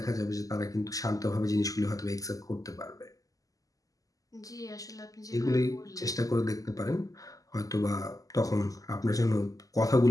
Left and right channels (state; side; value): late; right; 0.17 ms